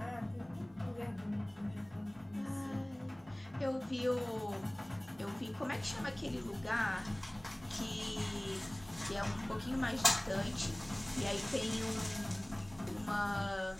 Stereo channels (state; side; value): noise; left; hum, 26 dB below the sound